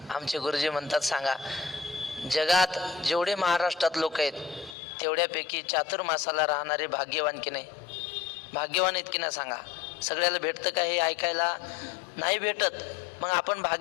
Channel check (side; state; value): right; drops out; at 4.8 s